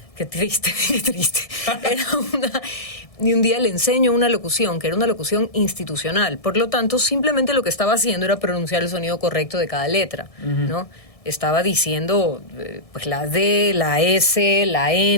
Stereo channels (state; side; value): late; right; 1.6 ms